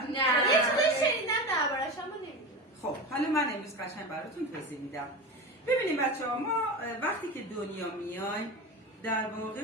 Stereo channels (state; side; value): normal; both; correlation 0.25